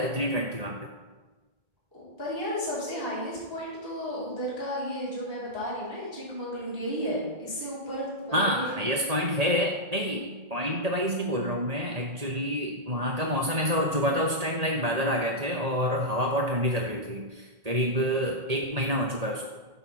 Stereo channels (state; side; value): late; left; 1.8 ms